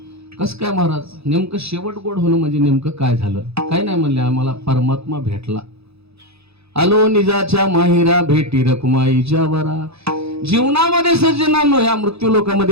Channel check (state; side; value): late; left; 0.79 ms